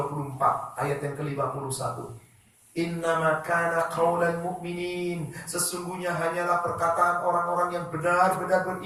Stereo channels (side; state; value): both; identical; correlation 1.00